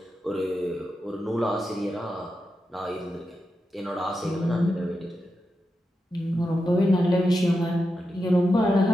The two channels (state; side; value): normal; both; correlation 0.88